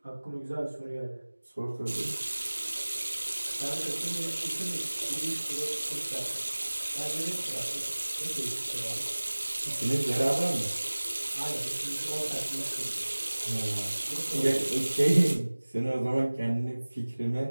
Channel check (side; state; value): both; inverted; correlation -1.00